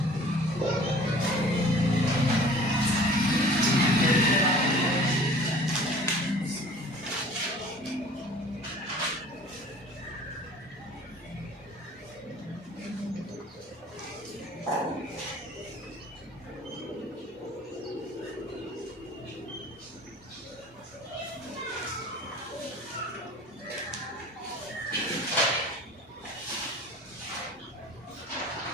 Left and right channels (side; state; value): both; normal; correlation 0.47